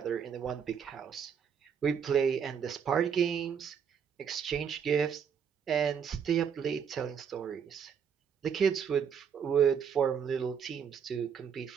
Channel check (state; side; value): quieter; left; 7.4 dB